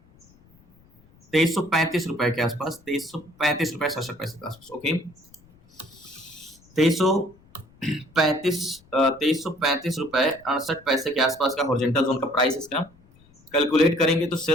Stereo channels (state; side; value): noise; left; rumble, 29 dB below the sound